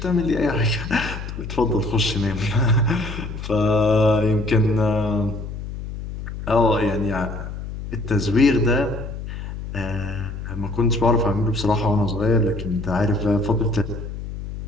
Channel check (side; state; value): left; noise; hum, 8 dB below the sound